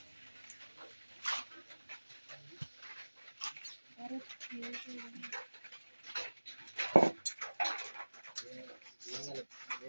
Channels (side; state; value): both; inverted; correlation -1.00